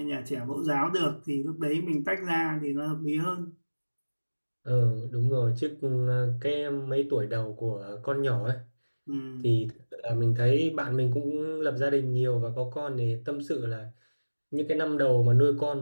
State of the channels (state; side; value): inverted; both; correlation -1.00